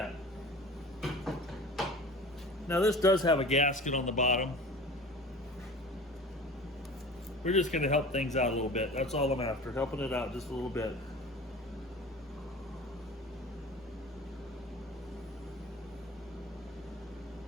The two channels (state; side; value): normal; both; correlation 0.39